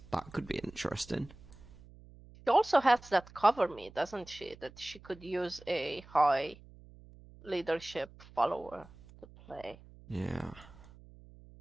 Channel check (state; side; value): noise; right; hum, 21 dB below the sound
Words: That could be interesting. She also has that cover me, doesn't she? That she could use a high leadership follower to play. Yeah.